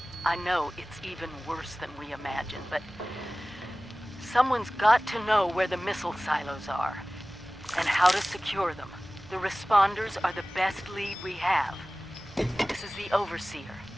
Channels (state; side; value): normal; both; correlation 0.98